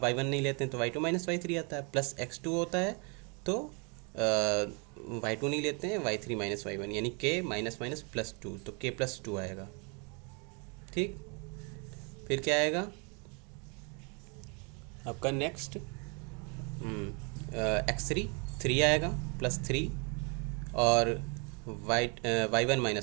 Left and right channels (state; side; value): quieter; left; 34.5 dB